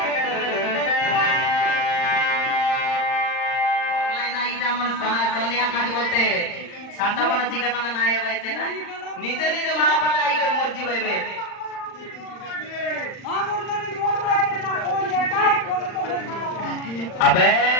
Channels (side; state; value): right; late; 39 ms